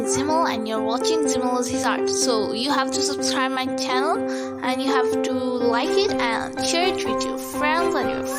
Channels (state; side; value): identical; both; correlation 1.00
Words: and you're watching Zimal His Art. So you have to subscribe my channel and you have to like it and share it with your friends and your